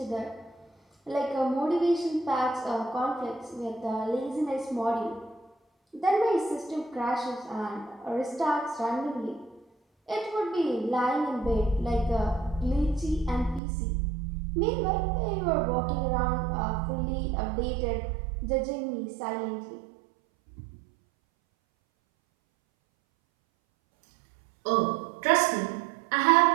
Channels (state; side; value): drops out; left; at 13.6 s